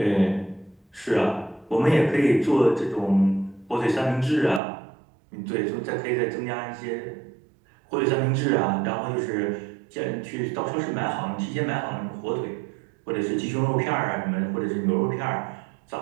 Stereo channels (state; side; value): drops out; left; at 4.6 s